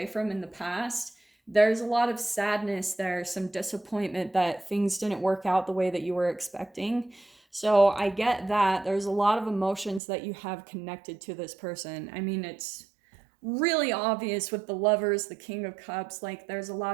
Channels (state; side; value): drops out; left; at 10.0 s